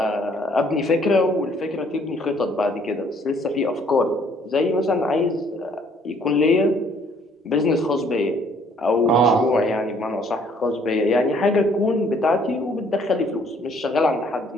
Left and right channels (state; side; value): normal; both; correlation 0.62